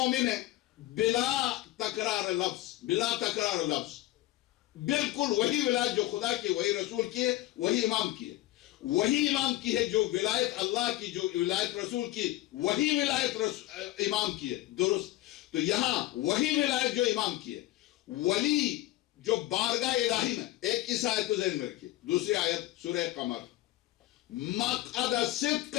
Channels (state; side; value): quieter; right; 16.3 dB